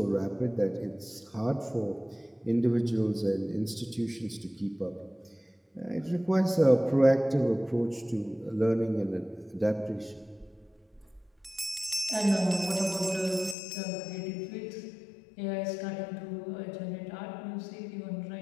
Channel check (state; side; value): drops out; right; at 13.6 s